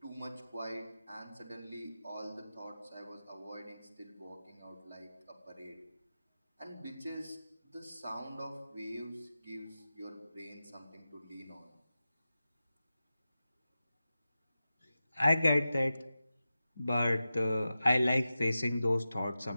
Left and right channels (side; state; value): both; inverted; correlation -0.93